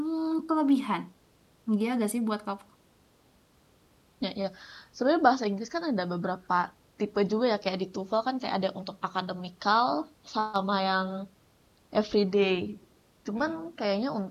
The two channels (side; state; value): both; identical; correlation 1.00